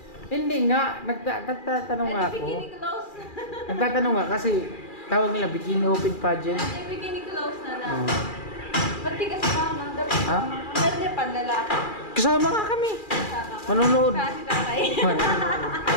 Hindi nga, nagtatanong nga ako. Bikini close. Nagtatanong nga kasi tawag nila bikini open pageant. Ay, bikini close na lang. Oh. Ba't di ka sumama? Dapat Ha? Pwede panlalaki. Kasama nga kami. Sama ka. Manonood. Sa si tatay.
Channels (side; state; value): right; late; 2.4 ms